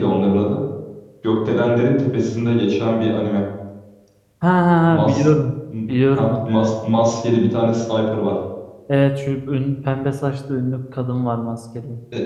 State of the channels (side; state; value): both; identical; correlation 1.00